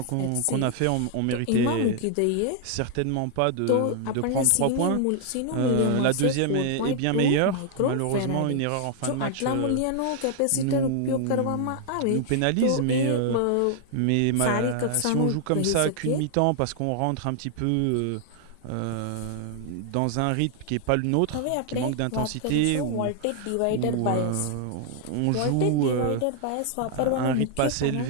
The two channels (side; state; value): both; different; correlation 0.00